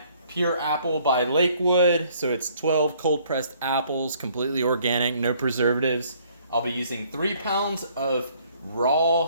pure apple by Lakewood. So it's 12 cold pressed apples, completely organic, no preservatives. I'll be using 3 pounds of raw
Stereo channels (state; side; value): inverted; both; correlation -0.62